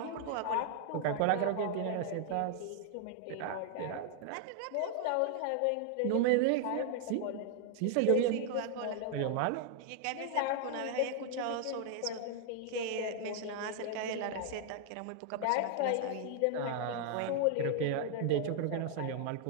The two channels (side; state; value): both; different; correlation 0.00